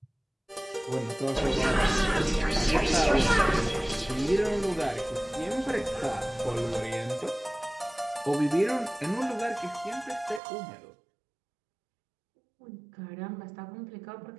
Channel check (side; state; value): left; drops out; at 10.4 s